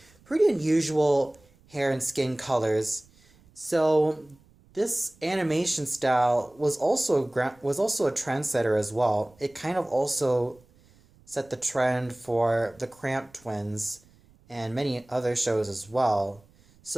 pretty unusual hair and skin colors. So this animation style was also a trendsetter as well. It kind of also set the trend for the Cramp Twins and many other shows as well.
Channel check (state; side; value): noise; right; rumble, 29 dB below the sound